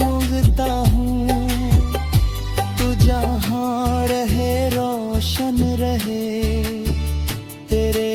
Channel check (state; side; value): identical; both; correlation 1.00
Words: हूँ। तू जहाँ रहे रोशन रहे तेरे